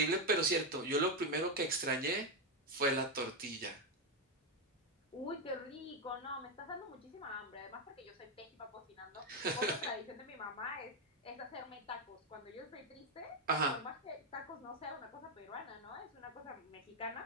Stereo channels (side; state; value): both; normal; correlation 0.06